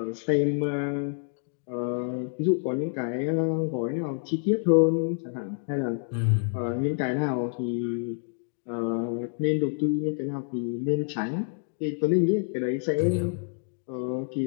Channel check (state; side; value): silent; right; digital silence